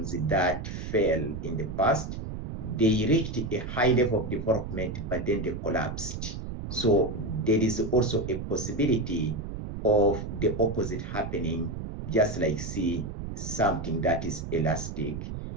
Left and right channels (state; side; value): noise; right; rumble, 7 dB below the sound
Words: that fell in the past. They reached a high level of development, but then they collapsed. So there is also a possibility of the opposite happening, just like see something that is elastic.